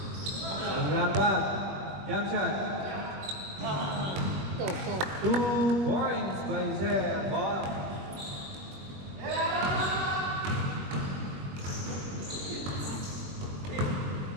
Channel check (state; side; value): late; left; 21 ms